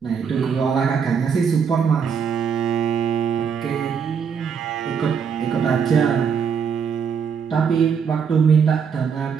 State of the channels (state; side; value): quieter; left; 6.7 dB